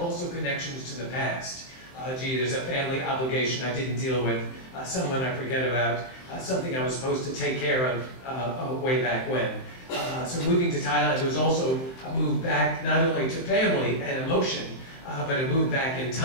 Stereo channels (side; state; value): right; late; 24 ms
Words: connections to the past. Gee, there's a family obligation I didn't deal with, someone I forget about, something I was supposed to take care of way back when. So moving to Thailand was also a move back not only to family and emotion, but a move back in